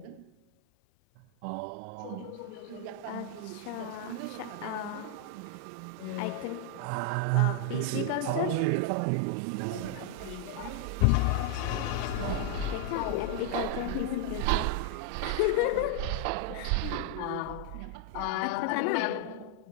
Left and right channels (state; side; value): different; both; correlation 0.00